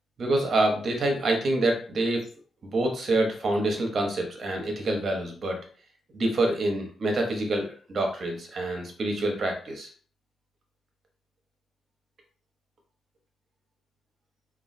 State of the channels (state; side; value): normal; both; correlation 0.85